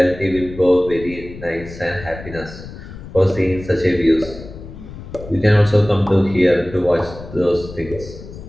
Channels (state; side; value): noise; left; rumble, 14 dB below the sound